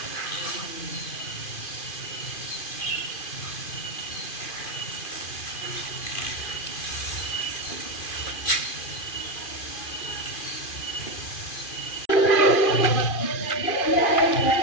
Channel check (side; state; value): right; late; 2.4 ms